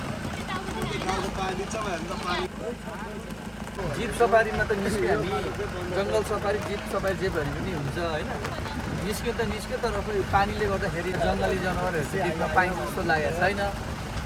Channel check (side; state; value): both; identical; correlation 1.00